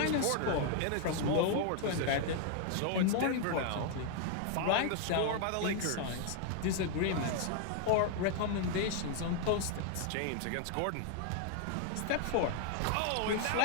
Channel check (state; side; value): different; both; correlation 0.00